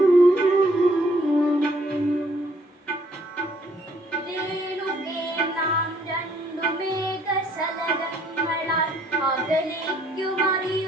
രേണുകേ നാം രണ്ടു മേഘശലഭങ്ങളാൽ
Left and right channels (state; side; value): normal; both; correlation 0.65